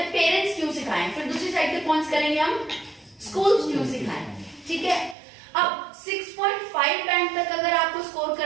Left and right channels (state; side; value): drops out; left; at 5.2 s